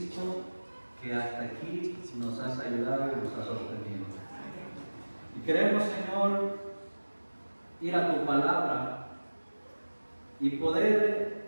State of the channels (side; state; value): both; inverted; correlation -1.00